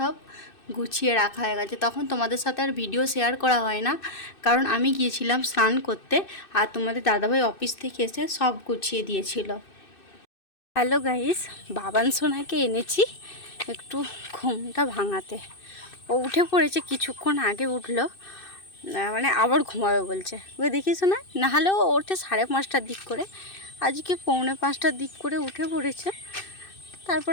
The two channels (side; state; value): right; late; 2.6 ms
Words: গুছিয়ে রাখা হয়ে গেছে। তখন তোমাদের সাথে আর ভিডিও শেয়ার করা হয় না, কারণ আমি গিয়েছিলাম স্নান করতে, আর তোমাদের দাদাভাই অফিস থেকে এসে সব গুছিয়ে দিয়েছিল। হ্যালো গাইস, বাবান সোনাকে এনেছি একটু ঘুমটা ভাঙাতে। ও উঠে পড়েছে, কিছুক্ষণ আগে উঠলো। মানে আবার ঘুমাবে বলছে। ওই দেখিস না, নাহলেও ওঠে 5:30টার দিক করে। আজকে 4:45টার দিক করে উঠে পড়েছে।